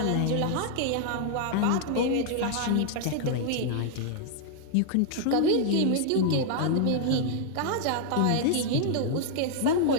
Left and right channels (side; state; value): both; different; correlation 0.00